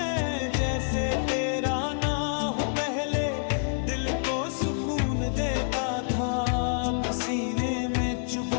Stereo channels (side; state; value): right; silent; digital silence